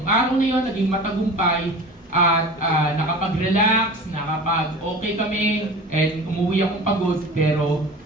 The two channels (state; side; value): normal; both; correlation 0.37